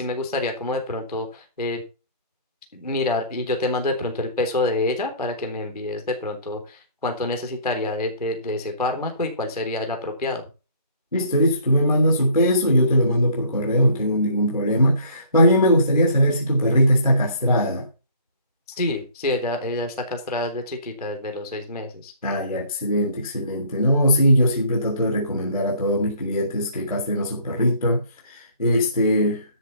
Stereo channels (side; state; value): both; inverted; correlation -0.55